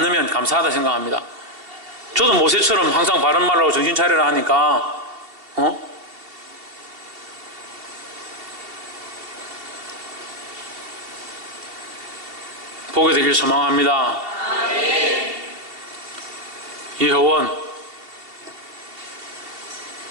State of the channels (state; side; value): late; left; 2.7 ms